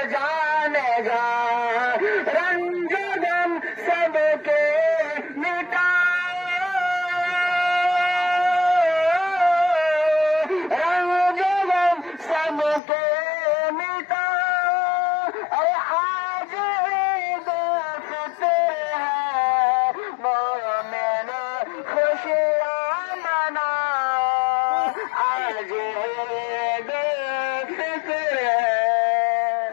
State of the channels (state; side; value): drops out; right; at 12.8 s